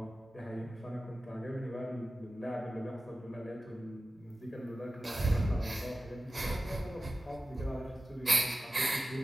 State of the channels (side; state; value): both; normal; correlation 0.95